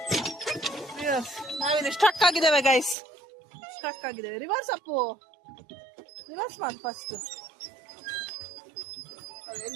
ನಾವಿಲ್ಲಿ ಸ್ಟಕ್ ಆಗಿದ್ದೇವೆ ಗೈಸ್, ರಿವರ್ಸ್ ಅಪ್ಪು, ರಿವರ್ಸ್ ಮಾಡಿ ಫಸ್ಟ್.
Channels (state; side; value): drops out; left; at 3.0 s